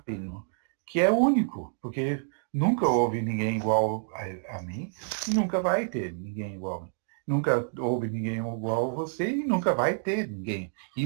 que é único, porque nunca houve ninguém igual a mim e nunca vai ter ninguém igual a mim. Nunca houve ninguém igual a você e nunca vai ter ninguém.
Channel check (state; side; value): silent; left; digital silence